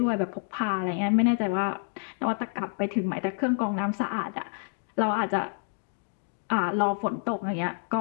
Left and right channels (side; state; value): right; silent; 59 dB below the other